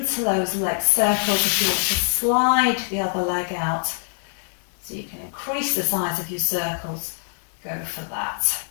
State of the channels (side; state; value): right; silent; 63 dB below the other